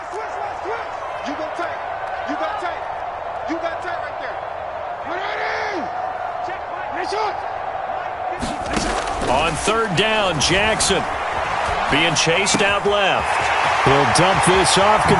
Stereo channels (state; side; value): identical; both; correlation 1.00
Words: On 3rd down, Jackson being chased out left. He'll dump this off,